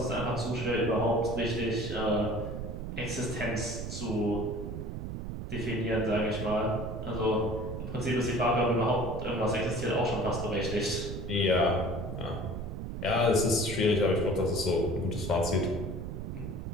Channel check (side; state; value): right; noise; rumble, 6 dB below the sound